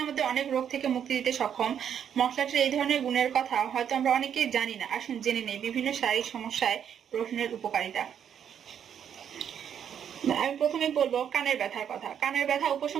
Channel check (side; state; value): left; quieter; 8.7 dB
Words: আমাদের অনেক রোগ থেকে মুক্তি দিতে সক্ষম। মশলাটির এই ধরনের গুণের কথা হয়তো আমরা অনেকেই জানি না। আসুন জেনে নেই বিভিন্ন শারীরিক সমস্যায় রসুনের উপকারিতা। আমি প্রথমে বলবো কানের ব্যথার কথা। কানের ব্যথা